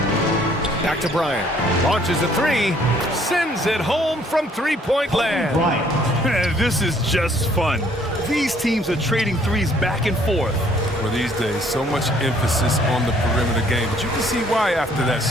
Back to Bryant. Launches a 3. Sends it home from three-point land. This is just fun. These teams are trading threes back and forth. Well, these days, so much emphasis on the perimeter game, but you can see why after that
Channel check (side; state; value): both; normal; correlation 0.62